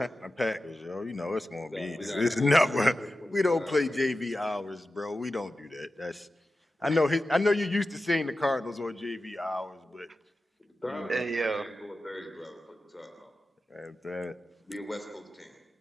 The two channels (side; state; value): both; normal; correlation 0.93